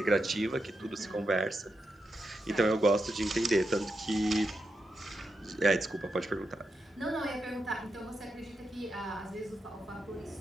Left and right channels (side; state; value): both; normal; correlation 0.86